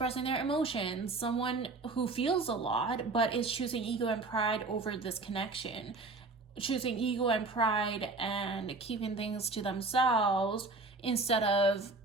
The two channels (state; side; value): quieter; left; 3.6 dB